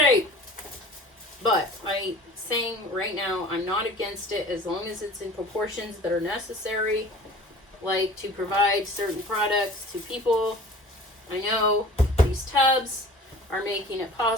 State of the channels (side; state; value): both; normal; correlation 0.44